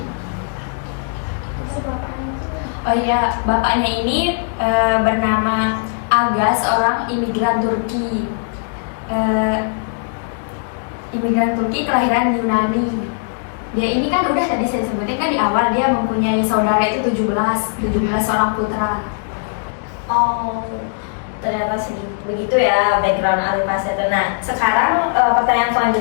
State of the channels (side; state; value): right; silent; digital silence